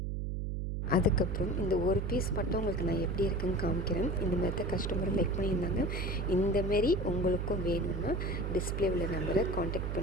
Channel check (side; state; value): right; noise; hum, 2 dB below the sound